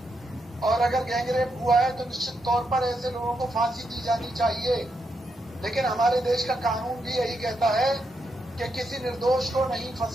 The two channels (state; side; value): normal; both; correlation 0.82